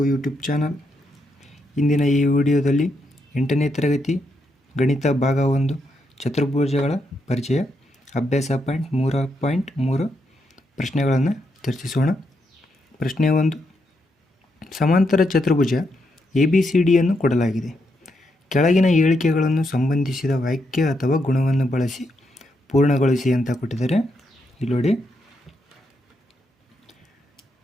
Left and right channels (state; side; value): normal; both; correlation 0.80